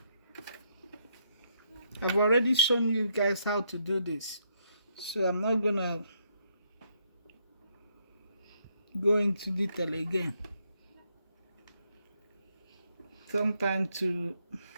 shown you guys how to do this, so I'm not gonna go into detail again. Sometimes to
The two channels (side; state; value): both; inverted; correlation -0.74